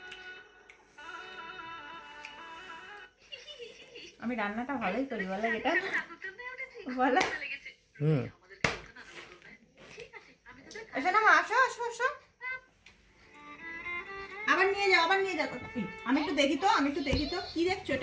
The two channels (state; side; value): identical; both; correlation 1.00